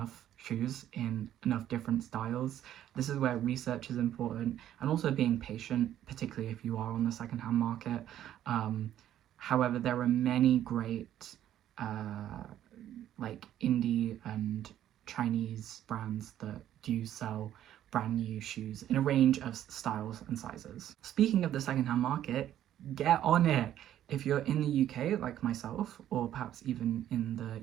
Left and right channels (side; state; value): left; quieter; 11.6 dB